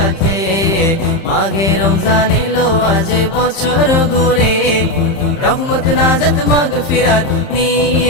মাহে রমজান এলো আজ বছর ঘুরে, রহমত নাজাত মাগফিরাত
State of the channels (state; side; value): late; right; 30 ms